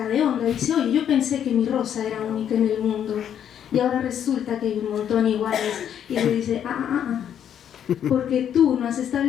de onda y dice, oye, yo pensé que mi rosa era única en el mundo y ahora resulta que hay un montón iguales. Y le dice, porque tú no has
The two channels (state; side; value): quieter; right; 9.3 dB